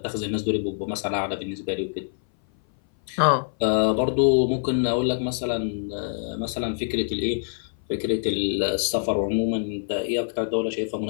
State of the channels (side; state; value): right; silent; 58 dB below the other